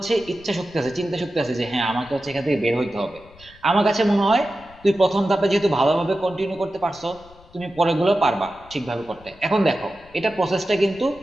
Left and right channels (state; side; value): noise; left; rumble, 24 dB below the sound